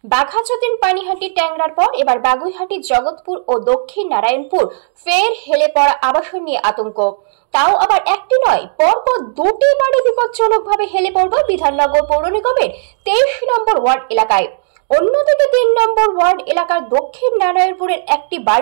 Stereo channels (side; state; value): left; silent; digital silence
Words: বাঘাযতীন পানিহাটি ট্যাংরার পর এবার বাগুইহাটি জগৎপুর ও দক্ষিণ নারায়ণপুর ফের হেলে পড়া আবাসন নিয়ে আতঙ্ক। তাও আবার একটি নয়, পরপর দুটি বাড়ি বিপজ্জনকভাবে হেলে পড়বে বিধাননগর পৌর নিগমের 23 নম্বর ওয়ার্ড এলাকায়। অন্যদিকে 3 নম্বর ওয়ার্ড এলাকার দক্ষিণ নারায়ণপুরের একটি